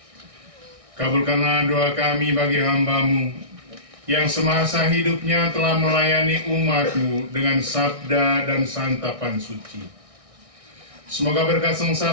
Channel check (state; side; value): late; left; 1.6 ms